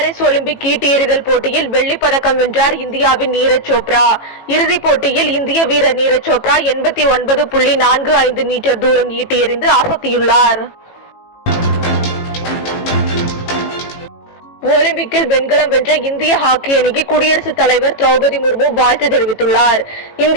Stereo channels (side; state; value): right; late; 18 ms